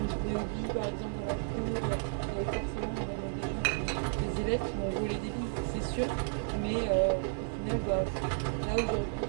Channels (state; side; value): silent; left; digital silence